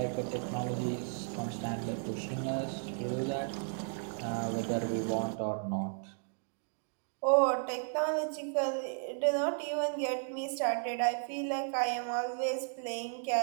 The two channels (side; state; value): left; silent; digital silence